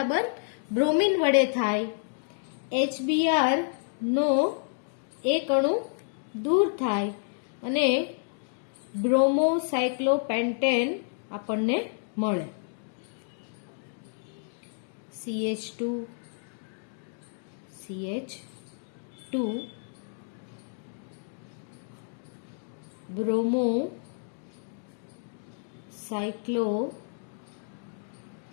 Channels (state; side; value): silent; right; digital silence